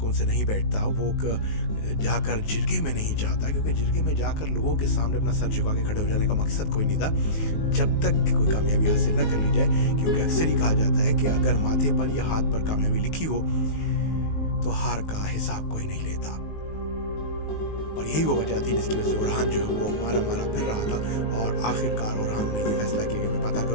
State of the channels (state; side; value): late; right; 19 ms